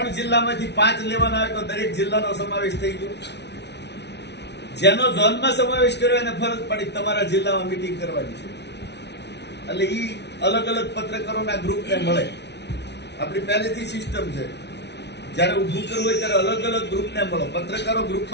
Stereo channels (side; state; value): right; late; 0.50 ms